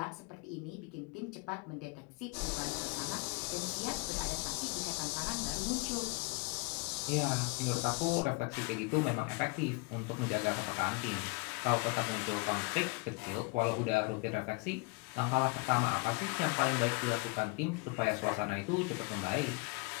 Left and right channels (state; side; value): quieter; right; 28.7 dB